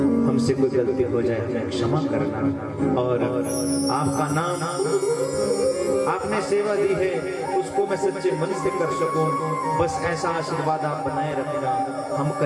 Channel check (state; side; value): identical; both; correlation 1.00